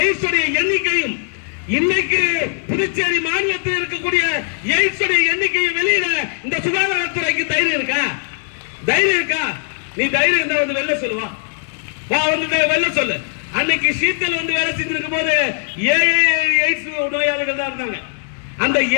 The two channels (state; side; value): silent; right; digital silence